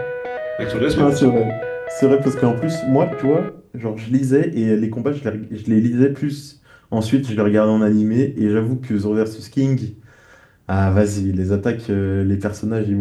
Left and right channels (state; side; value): identical; both; correlation 1.00